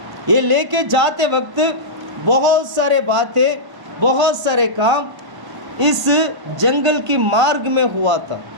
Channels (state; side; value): late; left; 1.5 ms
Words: ये लेके जाते वक्त बहुत सारे बातें, बहुत सारे काम इस जंगल की मार्ग में हुआ था।